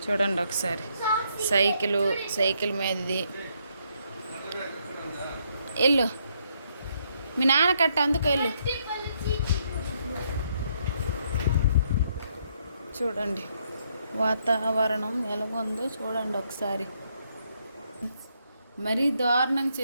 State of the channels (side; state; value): both; inverted; correlation -0.74